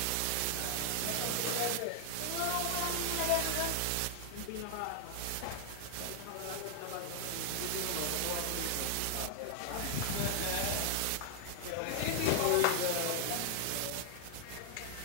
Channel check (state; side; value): different; both; correlation -0.01